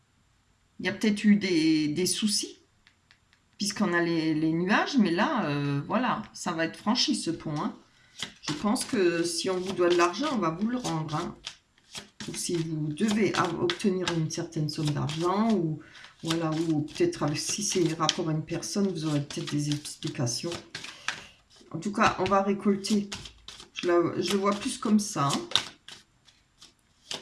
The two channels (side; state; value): both; identical; correlation 1.00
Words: Il y a peut-être eu des soucis puisqu'on a les nuages, mais là, voilà, ça va être franchi ce pont. Hein. Je pense que si on vous doit de l'argent, on va vous le rendre. Hein. Ou si vous devez obtenir une certaine somme d'argent, ou voilà, ou peut-être si c'est rapport à une personne, vous aurez peut-être des explications. En tout cas, on va récolter. Je le vois plus comme ça. Hein.